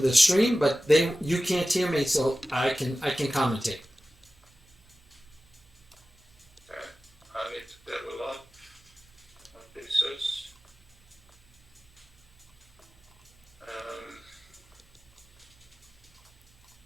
stream, but you can't hear me, so I can commentate. I need to level up my pieces.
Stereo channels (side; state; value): both; normal; correlation 0.95